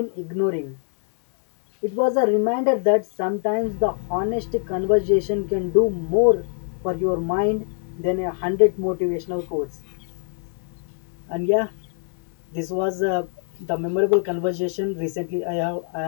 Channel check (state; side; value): silent; right; digital silence